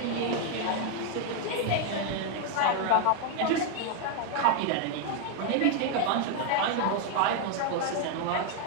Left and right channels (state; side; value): different; both; correlation 0.00